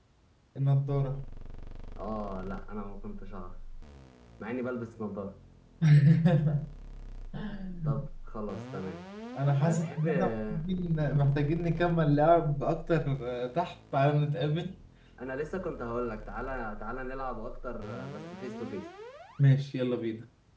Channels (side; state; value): both; identical; correlation 1.00